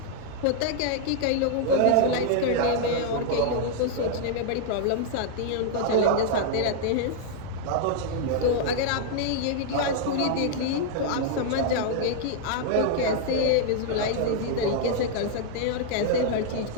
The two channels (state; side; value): different; both; correlation -0.01